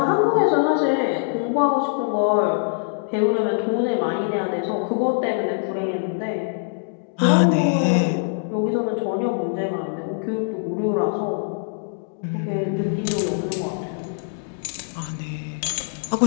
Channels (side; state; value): right; silent; digital silence